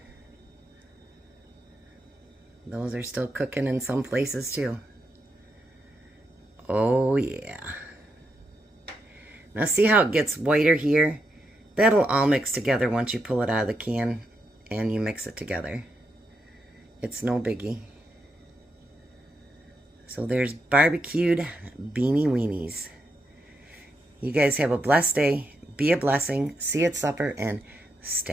Those are still cooking in some places too. Oh yeah. Now see how it gets whiter here? That'll all mix together once you pull it out of the can and you mix it together. It's no biggie. So there's barbecued Beanie Weanies. You guys have a blessed day. Be a blessing. See you at supper and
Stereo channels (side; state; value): both; normal; correlation 0.82